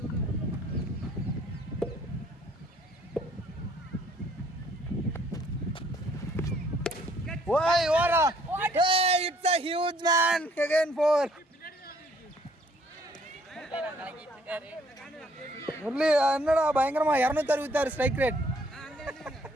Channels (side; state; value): both; normal; correlation 0.63